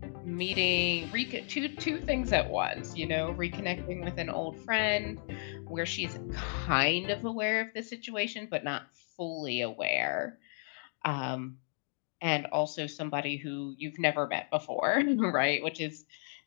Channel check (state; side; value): silent; right; 55 dB below the other